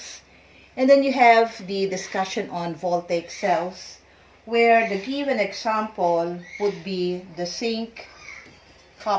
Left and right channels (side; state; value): both; identical; correlation 1.00